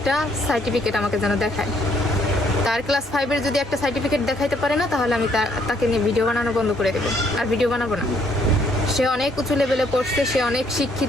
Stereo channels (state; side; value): normal; both; correlation 0.68